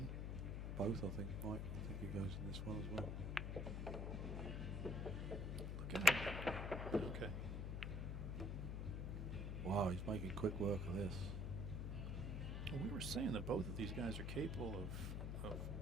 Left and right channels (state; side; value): noise; left; hum, 2 dB below the sound